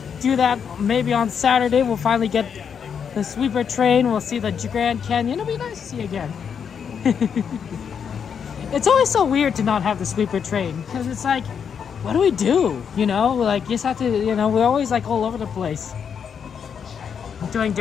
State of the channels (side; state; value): right; quieter; 7.2 dB